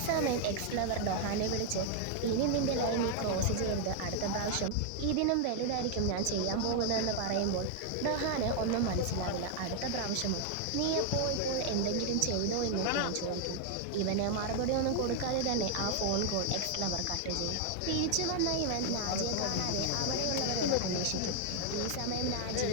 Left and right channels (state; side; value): different; both; correlation 0.00